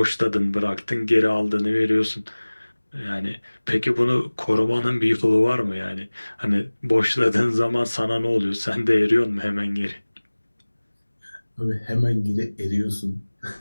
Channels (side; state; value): both; inverted; correlation -1.00